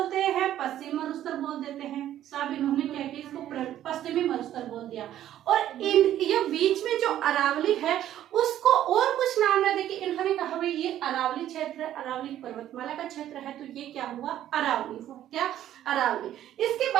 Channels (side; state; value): left; quieter; 12.0 dB